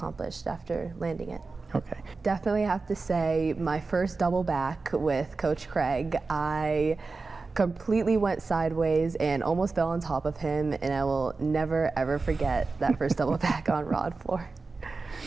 after landing it. Okay. Definitely have to say my first double back with Coach Craig. I completely went sideways and almost fell on top of him, and I will never ever forget that first double back on rod floor.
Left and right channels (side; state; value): left; quieter; 4.0 dB